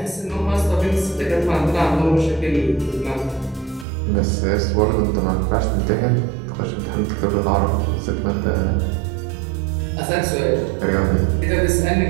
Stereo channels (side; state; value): left; drops out; at 3.9 s